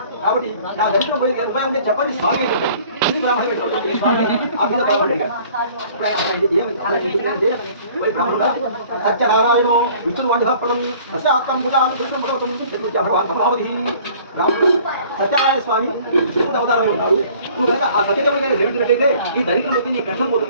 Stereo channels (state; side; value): inverted; both; correlation -0.52